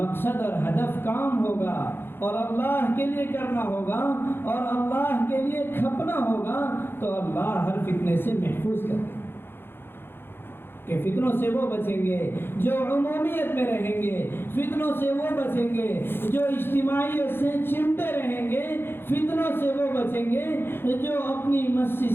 اور ہدف کام ہوگا اور اللہ کے لیے کرنا ہوگا اور اللہ کے لیے کھپنا ہوگا تو اللہ ہر فتنے سے محفوظ کرے گا۔ کہ فتنوں سے وہ بچیں گے جو عمومیت میں رہیں گے، فتنوں سے وہ بچیں گے جو اجتماعیت سے چمٹے رہیں گے، فتنوں سے وہ بچیں گے جو اپنی مسجد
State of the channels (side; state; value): right; late; 0.10 ms